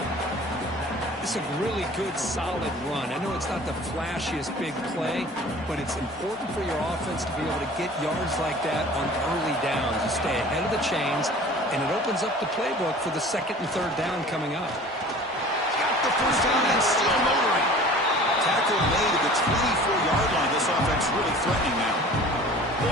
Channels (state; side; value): normal; both; correlation 0.44